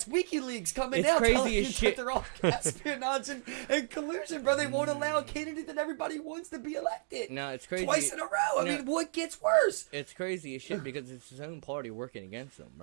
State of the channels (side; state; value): left; silent; digital silence